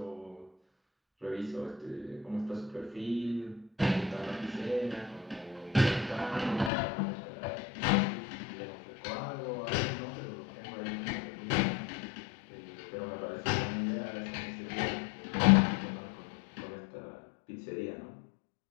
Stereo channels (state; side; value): drops out; right; at 6.7 s